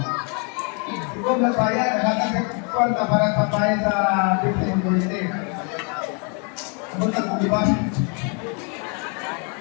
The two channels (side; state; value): right; quieter; 36.6 dB